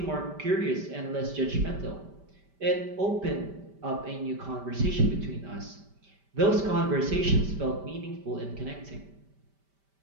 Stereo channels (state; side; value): late; left; 5.1 ms